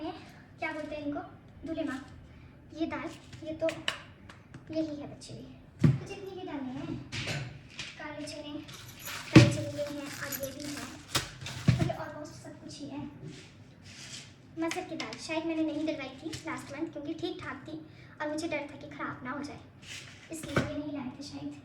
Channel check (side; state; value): both; identical; correlation 1.00